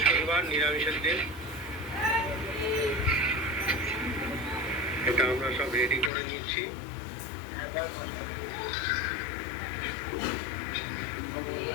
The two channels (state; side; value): drops out; right; at 6.1 s